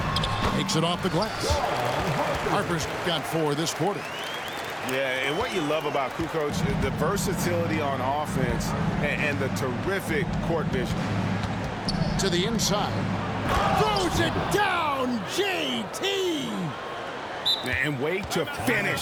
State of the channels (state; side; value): identical; both; correlation 1.00